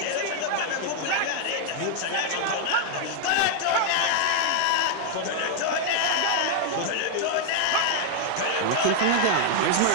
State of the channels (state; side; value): different; both; correlation 0.00